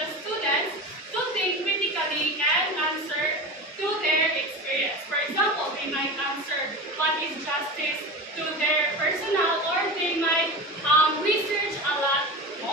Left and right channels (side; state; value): both; normal; correlation 0.28